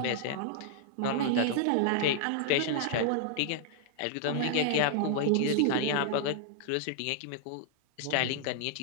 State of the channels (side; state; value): both; different; correlation -0.01